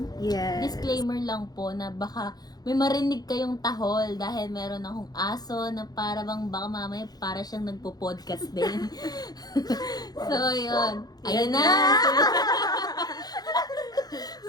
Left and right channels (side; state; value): right; late; 0.19 ms